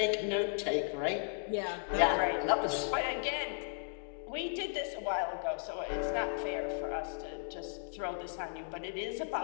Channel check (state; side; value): silent; right; digital silence